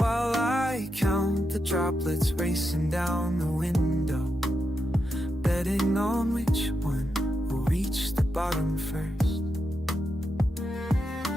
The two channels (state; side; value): normal; both; correlation 0.86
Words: I count the droplets racing down the window, betting on which one will reach the bottom first.